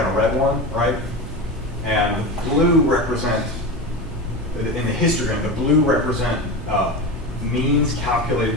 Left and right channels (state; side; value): normal; both; correlation 0.23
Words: a red one, right? And blue represent, in the histogram, the blue represent means calculated